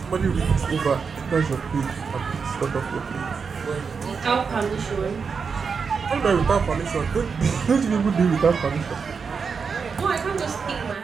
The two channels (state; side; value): quieter; left; 5.6 dB